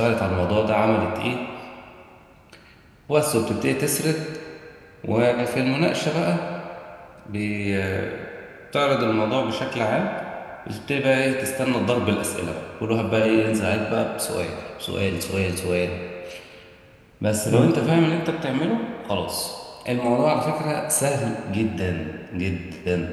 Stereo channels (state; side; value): identical; both; correlation 1.00